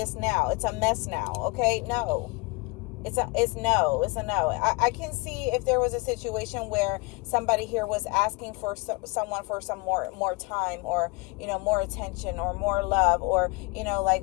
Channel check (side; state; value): right; quieter; 24.9 dB